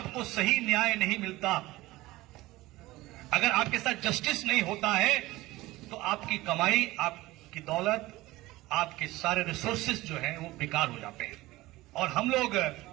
सही न्याय नहीं मिलता, अगर आपके साथ जस्टिस नहीं होता है, तो आपकी कमाई, आपकी दौलत, आपके सारे रिसोर्सेज जो हैं वो बेकार हो जाते हैं। और हम लोग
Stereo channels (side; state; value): left; quieter; 18.6 dB